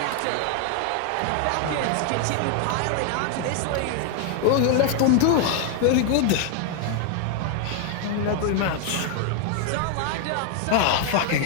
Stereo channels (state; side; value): different; both; correlation 0.00